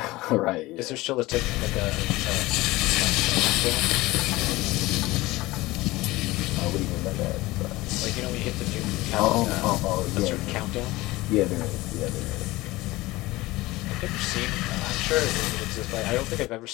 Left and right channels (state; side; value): quieter; right; 19.5 dB